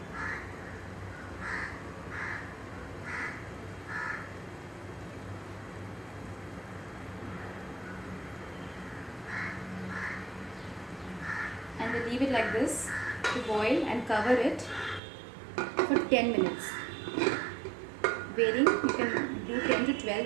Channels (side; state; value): left; drops out; at 15.0 s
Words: And we'll leave it like this to boil and cover it for 10 minutes. Varying, you can do 10 to